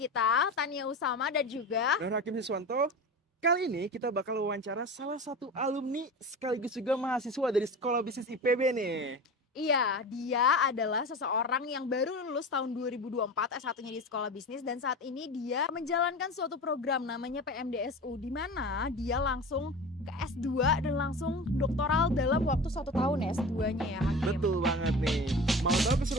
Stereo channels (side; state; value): both; normal; correlation 0.31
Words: Tania Usama dan juga dan Hakim Siswanto. Kali ini kita bakal wawancara salah satu alumni sekaligus juga mahasiswa dari Sekolah Bisnis IPB nih. iya, dia adalah seseorang yang baru lulus tahun 2024 S1-nya di Sekolah Bisnis dan saat ini dia menjalankan suatu program namanya PMDSU di mana dia langsung ke S2 dan langsung doktoral dalam waktu 1 tahun ya S2-nya ya Hakim. Betul banget nih. Mau tahu